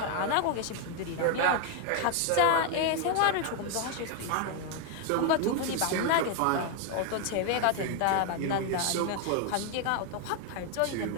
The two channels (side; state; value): both; different; correlation 0.01